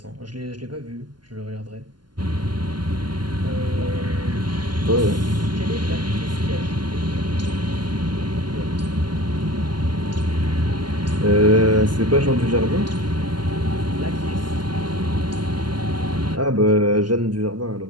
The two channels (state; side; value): late; left; 0.71 ms